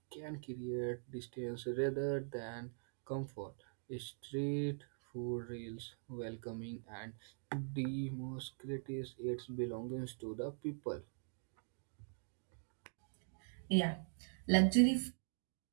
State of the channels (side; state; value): left; silent; digital silence